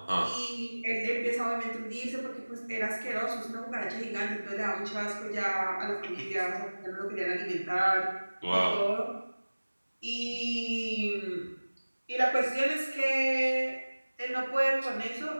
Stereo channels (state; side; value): inverted; both; correlation -1.00